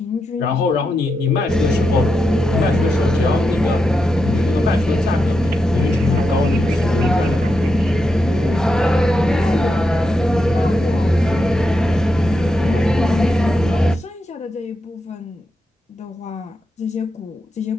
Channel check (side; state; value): both; normal; correlation 0.86